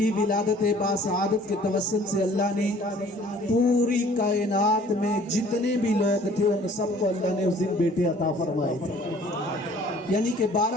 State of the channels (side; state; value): both; normal; correlation 0.53